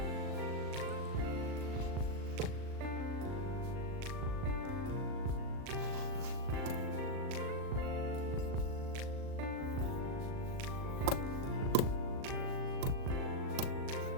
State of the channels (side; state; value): left; late; 38 ms